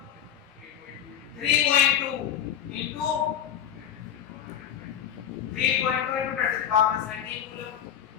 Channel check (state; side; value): quieter; right; 9.2 dB